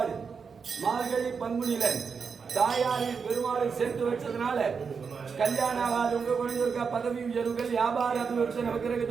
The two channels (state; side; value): quieter; left; 5.7 dB